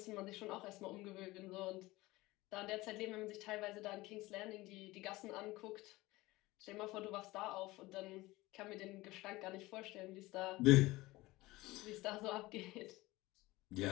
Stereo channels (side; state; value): right; quieter; 19.7 dB